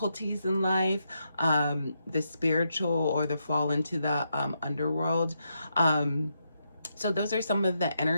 in life, the spiritual or the fall into the underworld. So those are some of the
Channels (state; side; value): inverted; both; correlation -0.82